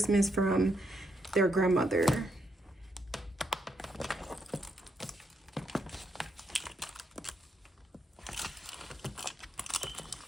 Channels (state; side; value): normal; both; correlation 0.79